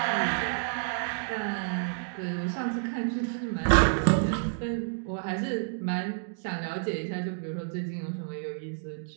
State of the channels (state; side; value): silent; left; digital silence